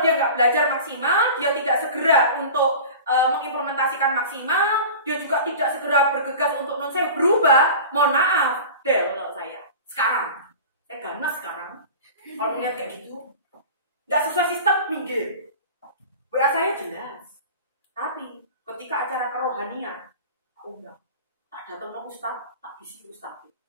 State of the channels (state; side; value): inverted; both; correlation -0.36